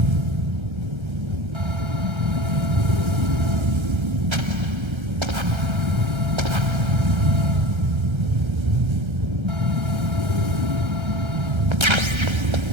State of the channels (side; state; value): left; late; 1.3 ms